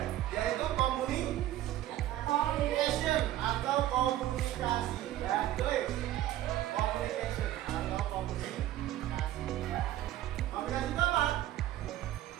yaitu communication atau komunikasi. Ya, tulis communication atau komunikasi. Komunikasi itu apa?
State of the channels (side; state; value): left; quieter; 13.6 dB